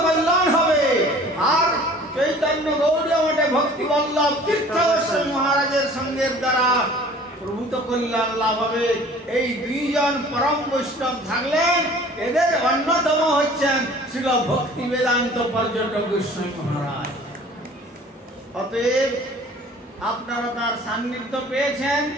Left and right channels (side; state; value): both; normal; correlation 0.48